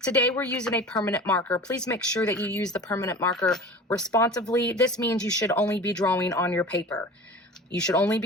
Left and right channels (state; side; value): normal; both; correlation 0.38